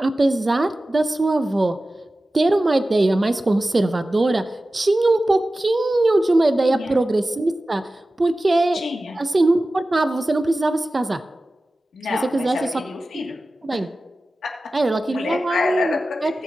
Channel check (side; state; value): both; normal; correlation 0.95